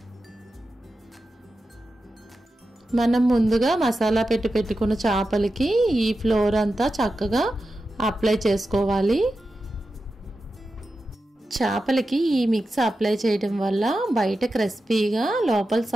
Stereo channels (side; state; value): both; normal; correlation 0.91